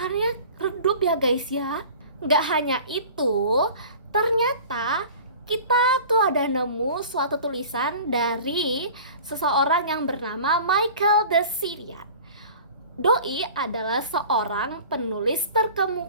redup ya guys ya. Gak hanya itu, ternyata kita tuh ada nemu suatu tulisan dari seseorang yang bernama Michael de Syrian. Doi adalah seorang penulis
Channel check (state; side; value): inverted; both; correlation -0.41